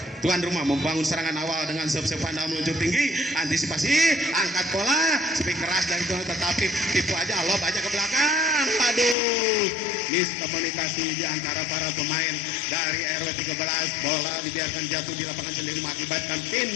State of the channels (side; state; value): right; drops out; at 9.2 s